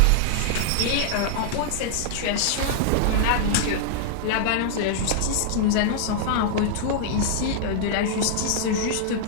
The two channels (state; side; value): different; both; correlation -0.01